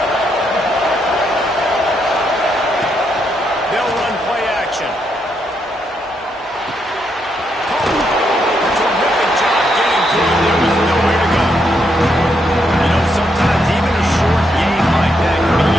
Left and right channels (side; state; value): both; normal; correlation 0.78